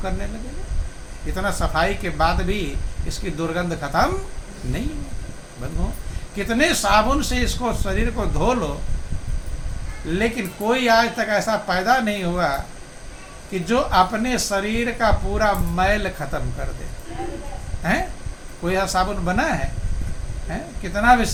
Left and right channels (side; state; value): both; identical; correlation 1.00